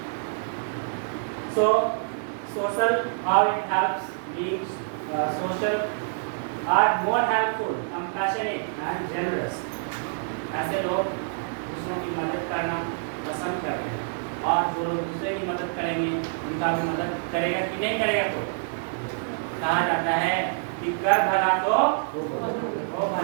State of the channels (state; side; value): silent; left; 60 dB below the other